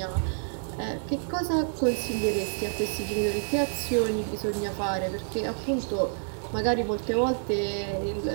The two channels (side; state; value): left; silent; 59 dB below the other